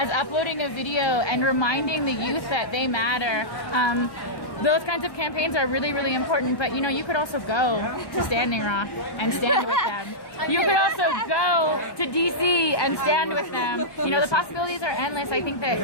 uploading a video and reminding the youth that they matter. Those kinds of campaigns are really important, but you could also go to Standing Rock and stand with them. You could also go to DC and stand with them. The possibilities are endless. I think that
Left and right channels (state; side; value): late; right; 1.1 ms